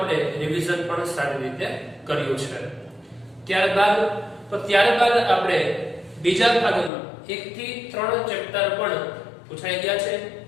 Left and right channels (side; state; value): right; drops out; at 6.9 s